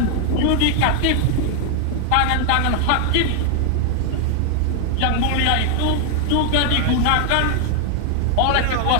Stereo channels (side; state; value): both; different; correlation 0.00